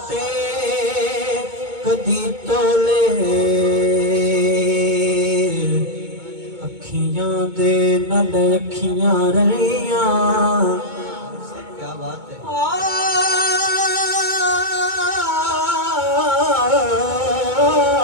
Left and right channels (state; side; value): late; left; 2.2 ms